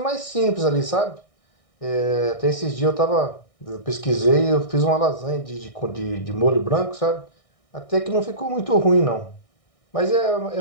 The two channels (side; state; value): right; late; 1.6 ms